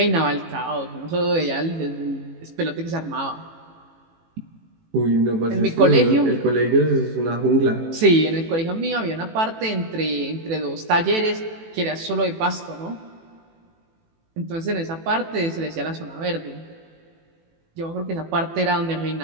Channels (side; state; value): left; late; 18 ms